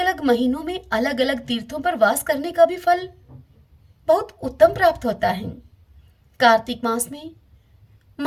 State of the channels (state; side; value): identical; both; correlation 1.00